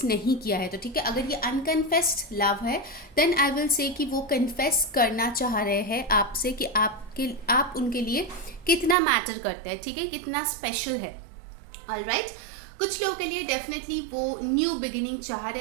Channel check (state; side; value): drops out; left; at 9.0 s